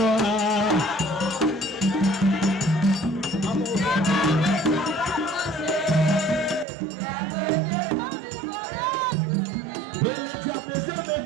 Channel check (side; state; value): left; drops out; at 6.7 s